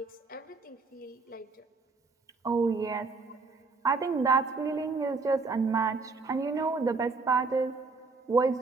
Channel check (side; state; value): left; quieter; 4.2 dB